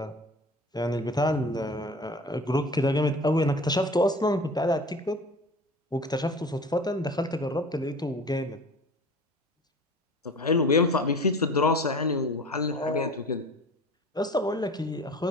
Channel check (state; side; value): normal; both; correlation 0.40